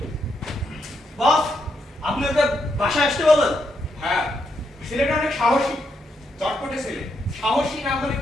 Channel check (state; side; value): normal; both; correlation 0.80